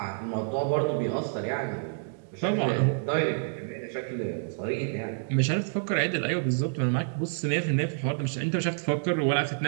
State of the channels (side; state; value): left; silent; digital silence